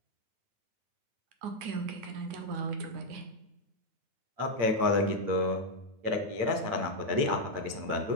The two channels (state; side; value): late; left; 8.8 ms